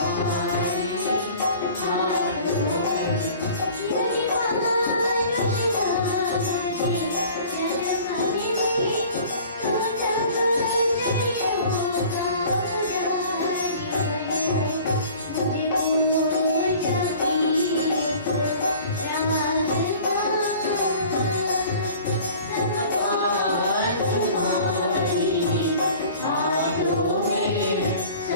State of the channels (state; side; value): inverted; both; correlation -0.46